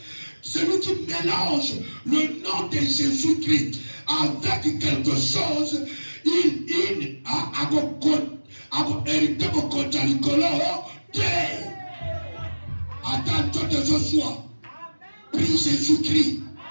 celui qui mélange le nom de Jésus-Christ avec quelque chose, il a hérité mon compte à l'icolo. Attends de Joshua. Prie Jésus-Christ.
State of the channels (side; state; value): both; inverted; correlation -1.00